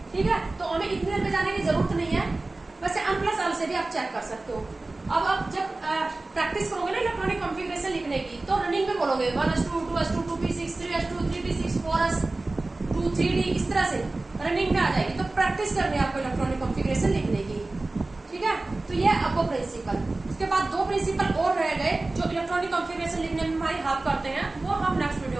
ठीक है। तो हमें इतने देर में जाने की जरूरत नहीं है, वैसे n प्लस एल से भी आप चेक कर सकते हो। अब आप जब प्रैक्टिस करोगे ना इलेक्ट्रॉनिक कॉन्फ़िगरेशन लिखने की, तो रनिंग में बोलोगे one S two, two S two, two P six, three S two, three P six, four S two, three D, इस तरह से रनिंग में आ जाएगी। तो प्रैक्टिस करनी है आपको इलेक्ट्रॉनिक कॉन्फ़िगरेशन लिखने की, ठीक है। तो ये आपको प्रिंसिपल, उसके बाद दो प्रिंसिपल और रह गए जो इलेक्ट्रॉनिक कॉन्फ़िगरेशन लिखने में हमारी हेल्प करते हैं, वो हम नेक्स्ट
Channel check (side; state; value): left; quieter; 3.1 dB